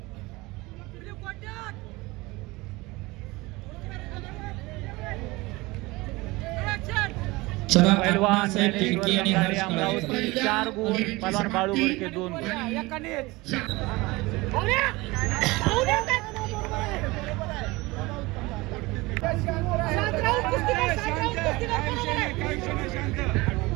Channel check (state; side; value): quieter; left; 22.1 dB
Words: चला पैलवान साहेब खिडकी आणि हर्ष कळवे. अमरावती 4 गुण, पैलवान बाळू बोडके 2 गुण.